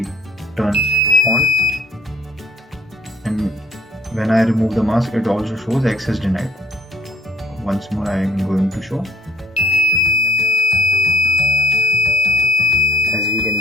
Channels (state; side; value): normal; both; correlation 0.58